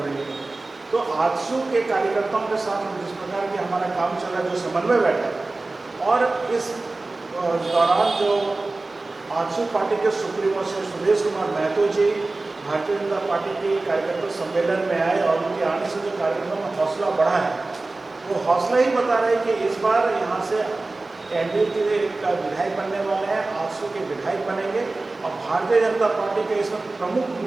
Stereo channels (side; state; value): left; quieter; 3.2 dB